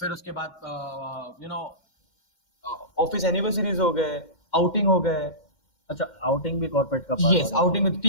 उसके बाद ऑफिस एनिवर्सरीज हो गए, आउटिंग हो गए। अच्छा, आउटिंग भी कॉर्पोरेट का part yes, outing with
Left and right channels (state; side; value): late; right; 2.1 ms